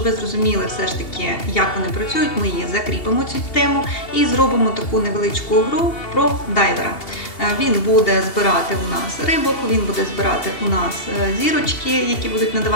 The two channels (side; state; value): right; late; 2.7 ms